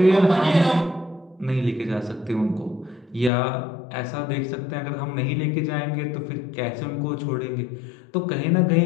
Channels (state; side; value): drops out; right; at 3.3 s